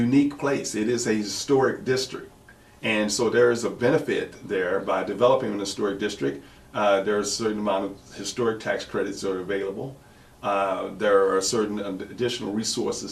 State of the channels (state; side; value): identical; both; correlation 1.00